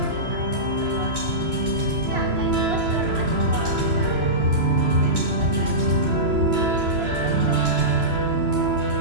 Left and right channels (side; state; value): left; late; 3.0 ms